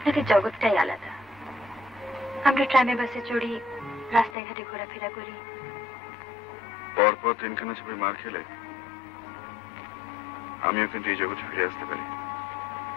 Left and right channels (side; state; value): right; drops out; at 4.4 s